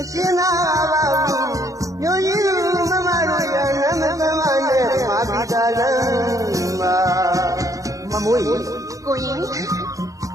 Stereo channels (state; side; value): late; left; 0.16 ms